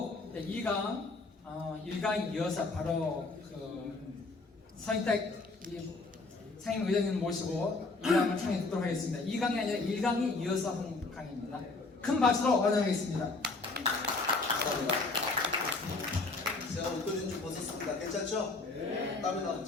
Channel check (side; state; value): right; quieter; 3.5 dB